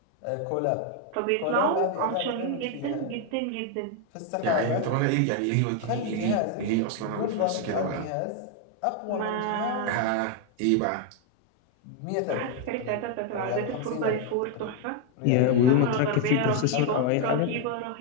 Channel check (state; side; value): different; both; correlation 0.01